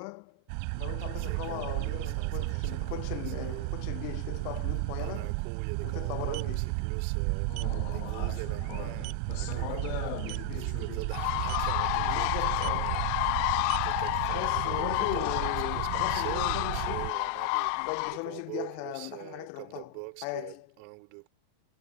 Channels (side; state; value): both; different; correlation 0.00